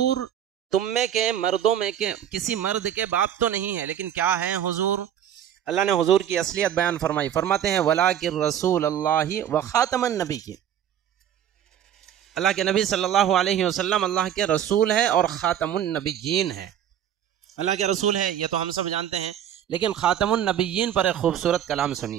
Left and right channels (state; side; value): quieter; left; 10.1 dB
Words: تم میں کے مردوں میں کے کسی مرد کے باپ تو نہیں ہے، لیکن کیا ہے حضور؟ اللہ نے حضور کی اصلیت بیان فرمائی، فرماتے ہیں وَلَٰكِن رسول اللہ وخاتم النبیین، اللہ کے نبی صلی اللہ علیہ وسلم اللہ کے رسول ہے اور خاتم النبیین ہے۔ اللہ کے رسول ہے یہ تو ہم سب جانتے ہیں، لیکن خاتم النبیین پر ایک خوبصورت کلام